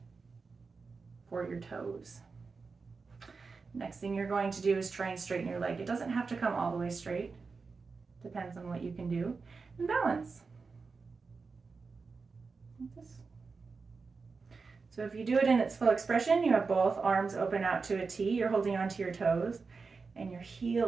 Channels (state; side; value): quieter; left; 4.6 dB